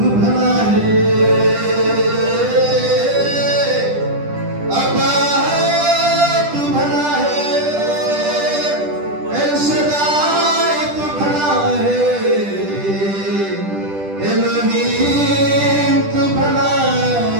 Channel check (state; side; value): late; left; 10 ms